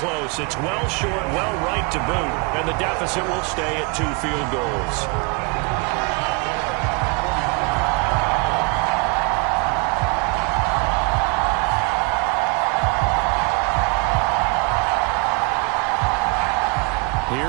It's well short, well right to boot. And the deficit will stay at 2 field goals.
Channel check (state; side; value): quieter; left; 30.9 dB